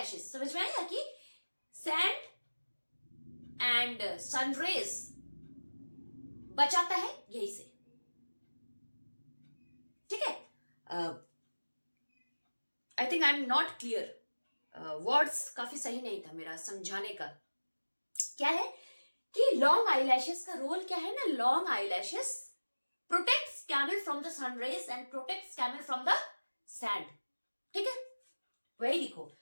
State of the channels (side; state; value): both; inverted; correlation -1.00